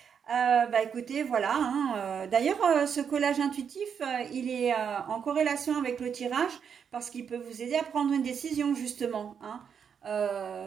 Bah écoutez, voilà, hein, d'ailleurs, ce collage intuitif, il est en corrélation avec le tirage parce qu'il peut vous aider à prendre une décision, justement, hein.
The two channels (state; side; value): quieter; left; 7.2 dB